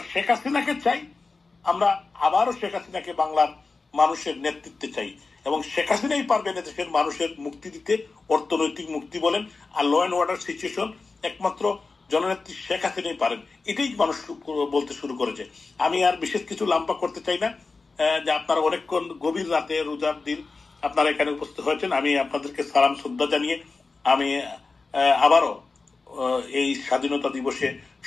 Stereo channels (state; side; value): quieter; right; 4.0 dB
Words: শেখ হাসিনাকে চাই, আমরা আবারও শেখ হাসিনাকে বাংলার মানুষের নেতৃত্বে চাই, এবং শেখ হাসিনাই পারবেন দেশের মানুষের মুক্তি দিতে, অর্থনৈতিক মুক্তি বলেন আর ল অ্যান্ড অর্ডার সিচুয়েশন একমাত্র জননেত্রী শেখ হাসিনাই পারেন। এটাই মানুষ বলতে শুরু করেছে। আমি আর বিশেষ কিছু লাম্পা করতে চাই না, যে আপনারা অনেকক্ষণ গভীর রাতে রোজার দিন আপনারা এখানে উপস্থিত হয়েছেন। আমি আপনাদেরকে সালাম শ্রদ্ধা জানিয়ে আমি আবারও এই স্বাধীনতা দিবসে